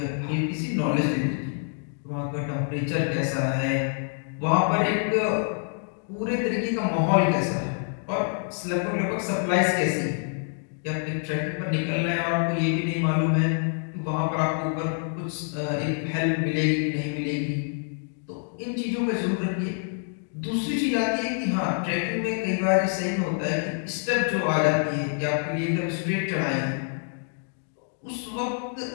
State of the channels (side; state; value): right; silent; 55 dB below the other